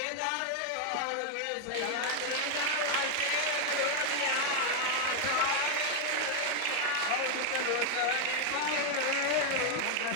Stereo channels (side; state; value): both; different; correlation 0.00